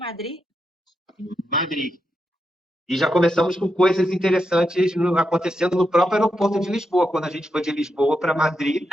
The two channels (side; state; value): both; normal; correlation 0.85